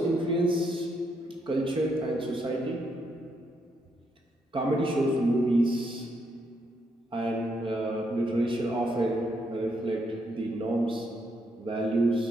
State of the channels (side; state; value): both; normal; correlation 0.77